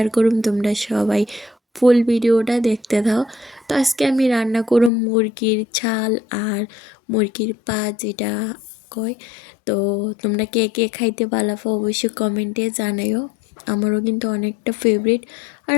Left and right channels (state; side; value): drops out; right; at 4.9 s